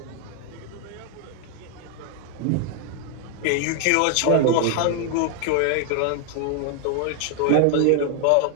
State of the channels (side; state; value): both; different; correlation 0.01